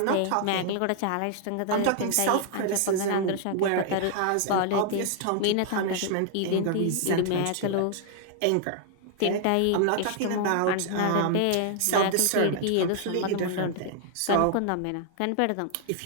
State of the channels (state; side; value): different; both; correlation 0.00